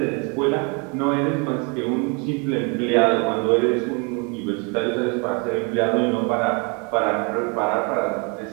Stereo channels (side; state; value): left; quieter; 32.9 dB